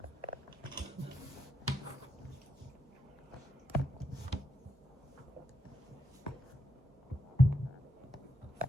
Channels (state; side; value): normal; both; correlation 0.82